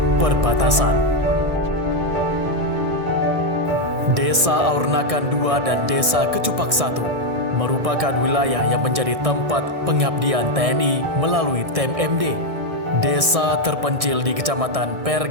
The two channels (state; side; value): late; left; 1.7 ms